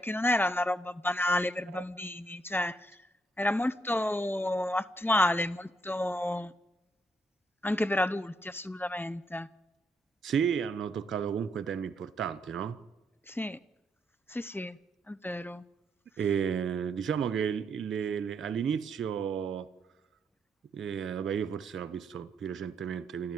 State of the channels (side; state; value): both; normal; correlation 0.75